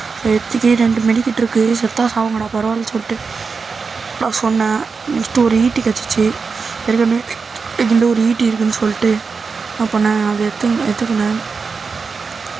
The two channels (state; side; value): quieter; left; 4.9 dB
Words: எடுத்துக்கி 2 மெடிக்கிட்டு இருக்குது. செத்தா சாவுங்கடா பரவாயில்ல சொல்லிட்டு நான் சொன்னேன். நெக்ஸ்ட்டு ஒரு ஈட்டி கிடச்சிச்சு. ஏற்கனவே இந்த ஒரு ஈட்டி இருக்குதுன்னு சொல்லிட்டு நான் பண்ணேன். அதை எடுத்துக்கினேன்.